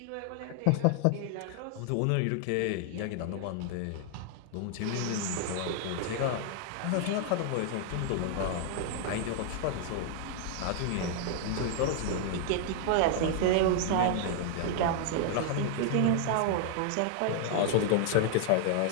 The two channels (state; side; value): different; both; correlation 0.00